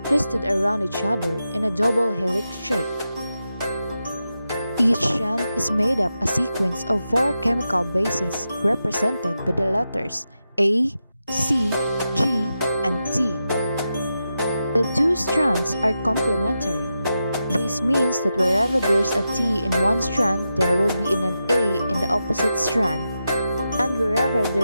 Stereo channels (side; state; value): both; inverted; correlation -0.89